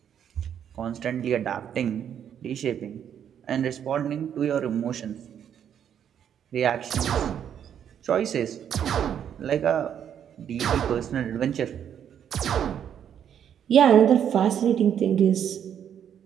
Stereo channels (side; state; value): left; quieter; 9.0 dB